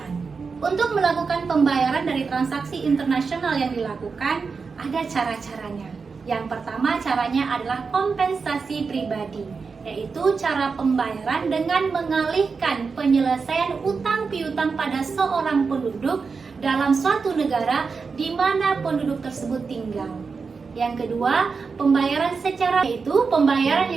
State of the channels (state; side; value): quieter; left; 5.0 dB